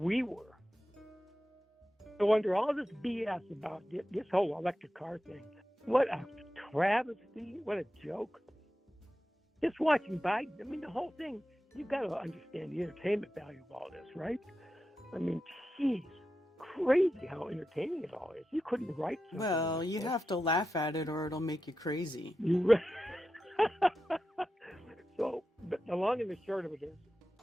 were. So under all this BS about this whole electric car thing, what a travesty, what a joke. Just watching Biden, I mean, the whole thing, you've got to understand the entertainment value of all this, right? I mean, geez, crazy how entertaining it all is. You couldn't write something. Well, you have to laugh at it or it'll make you crazy. So, but the long and the short of it is,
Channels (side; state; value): both; normal; correlation 0.91